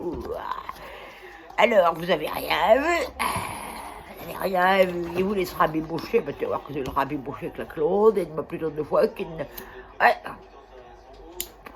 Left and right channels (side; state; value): both; identical; correlation 1.00